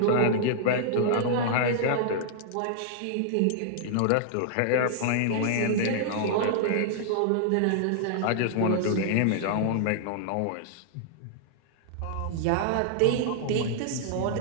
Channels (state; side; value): different; both; correlation -0.01